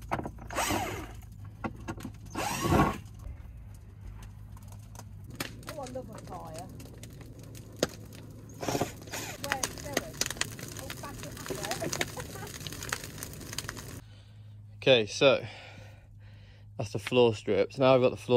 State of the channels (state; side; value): identical; both; correlation 1.00